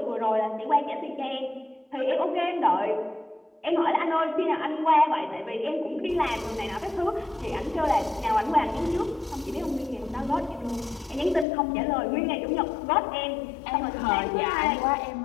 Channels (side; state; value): right; drops out; at 11.5 s